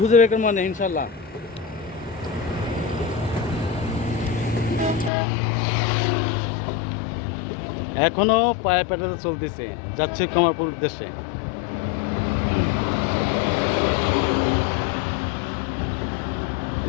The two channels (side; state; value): right; drops out; at 5.1 s